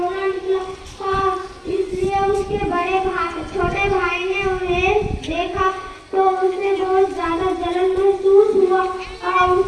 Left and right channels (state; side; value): identical; both; correlation 1.00